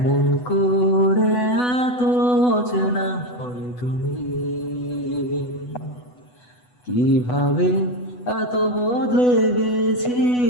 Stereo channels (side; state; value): right; late; 8.1 ms